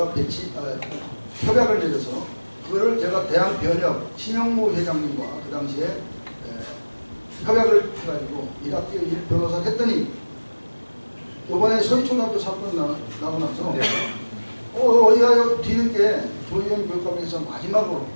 협약을 내려서 그거를 제가 대한변협 신영무 회장님과 그 당시에 협약을 해가지고 1학기 1 변호사를 했더니 이번에 서희초등학교 사건 나고 나서 어디가 뒤늦게 조희연 교육감에서 마지막으로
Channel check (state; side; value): inverted; both; correlation -1.00